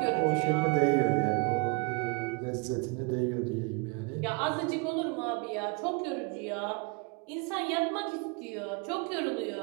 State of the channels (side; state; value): left; quieter; 31.1 dB